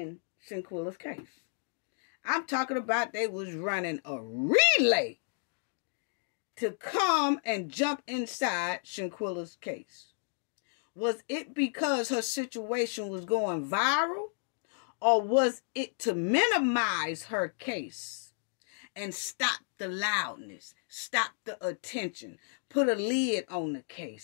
Shanquella's case? I'm talking about they was running a relay to come and jump inside Shanquella's case. Was it because her situation was going viral? Or was it to minimize her case and stop the loudness, stop the attention, put a lid on the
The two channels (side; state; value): right; silent; digital silence